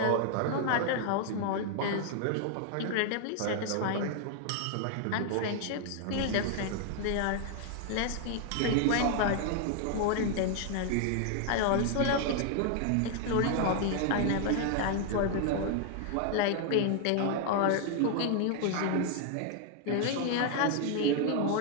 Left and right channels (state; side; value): different; both; correlation 0.00